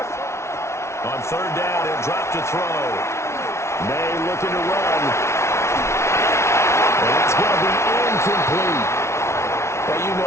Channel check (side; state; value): right; late; 0.13 ms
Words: On 3rd down, he'll drop to throw. May looking to run. And it's going to be incomplete. Well, you